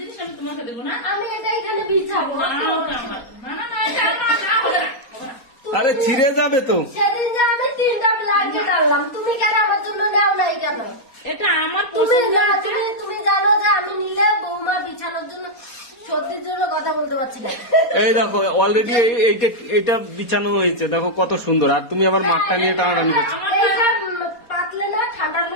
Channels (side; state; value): right; late; 4.3 ms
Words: আমি তোমাকে দেবো না? আমি এটা এখানে বিছাবো। না, ওটা আমার। না, না, না, এটা আমার, না, হবে না, হবে না। আরে ছিঁড়ে যাবে তো। সেদিন যে আমি 3টা ব্ল্যাঙ্কেট আনলাম, তুমি কেন আমার জন্য নেও নাই কেন? এটা আমার তুমি পছন্দের না জিনিস। তুমি জানো যে আমি নিলে বৌমা বিছানোর জন্য সত্যির জন্য কথা বলতে পারছি না। এই দেখো অলরেডি এইটা বিছানো হয়েছে, দেখো কত সুন্দর, আর তুমি আবার মাঠটা নিয়ে টানাটানি করছো। এইটা পাতলে না ঠান্ডার